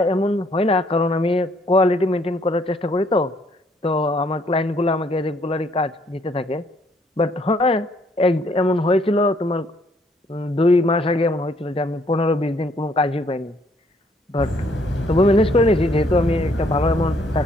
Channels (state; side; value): normal; both; correlation 0.66